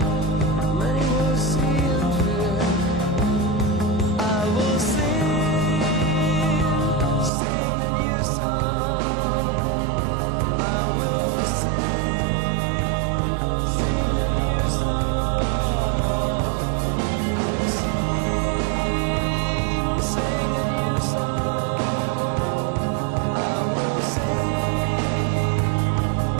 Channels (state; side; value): drops out; left; at 7.3 s